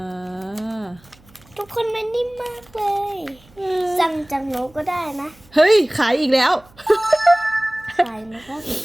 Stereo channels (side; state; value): right; noise; hum, 28 dB below the sound